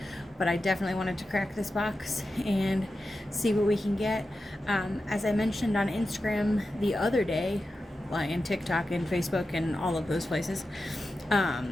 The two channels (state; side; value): normal; both; correlation 0.91